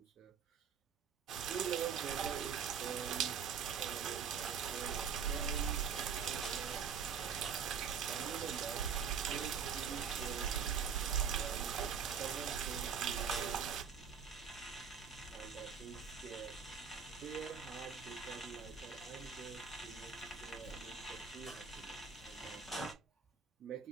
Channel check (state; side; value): quieter; left; 6.8 dB